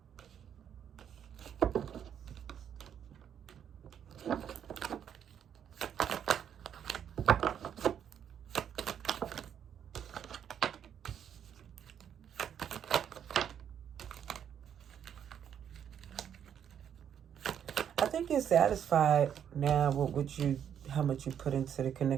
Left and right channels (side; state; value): left; quieter; 8.9 dB